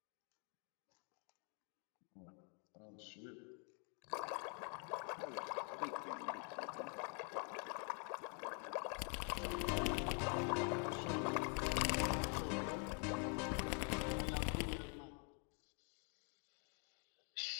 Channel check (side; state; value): right; quieter; 39.7 dB